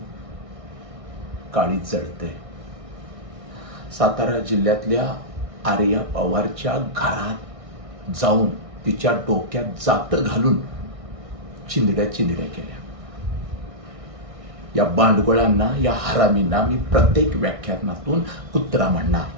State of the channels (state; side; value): late; left; 1.6 ms